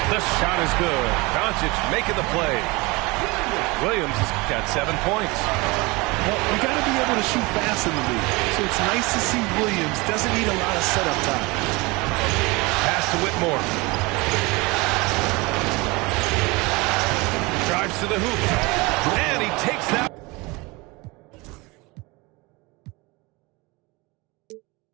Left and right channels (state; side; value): quieter; left; 24.8 dB